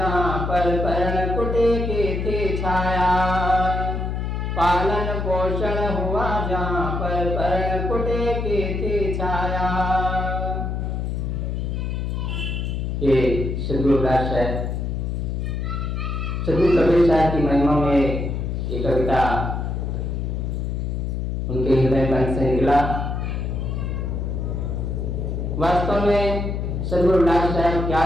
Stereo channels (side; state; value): left; noise; hum, 2 dB below the sound